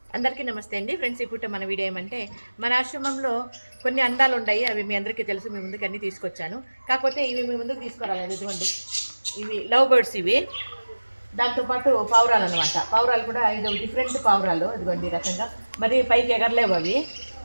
అందరికీ నమస్తే అండి ఫ్రెండ్స్. ఇప్పుడు మన వీడియో ఏమంటే మన ఆశ్రమంలో కొన్ని అందాలు ఉన్నాయి. అవి మీ అందరికీ తెలుసు. మీ ముందుకు అన్నీ తీసుకొచ్చాను. కాకపోతే ఇవి మీ ముందుకు తీసుకురాలేదు. ఇదిగోండి, ఇవి లవ్ బర్డ్స్. ఇవి దాంతోపాటు పావురాలు అనమాట. పావురాలు కూడా 5 డిఫరెంట్ పావురాలు. ఇదిగోండి ఈ రకంగా. మరి పైకి ఎగరలేవు అవి.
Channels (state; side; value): inverted; both; correlation -1.00